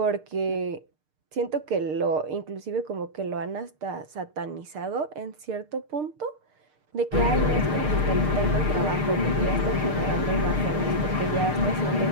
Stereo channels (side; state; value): left; late; 6.6 ms